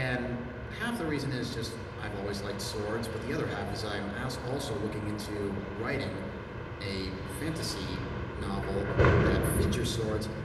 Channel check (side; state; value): both; identical; correlation 1.00